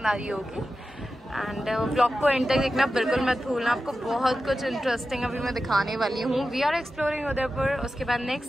आ रही होगी। एंड व्लॉग को एंड तक देखना बिल्कुल मत भूलना। आपको बहुत कुछ इंटरेस्टिंग अभी मैं दिखाने वाली हूँ। We are exploring Udaipur. उसके बाद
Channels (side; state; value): both; normal; correlation 0.92